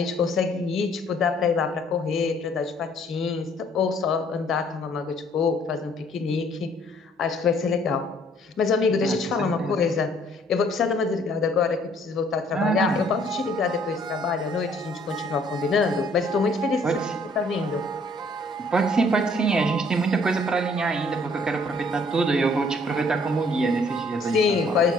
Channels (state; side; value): normal; both; correlation 0.61